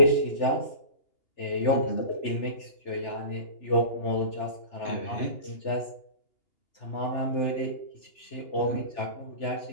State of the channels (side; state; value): right; late; 3.4 ms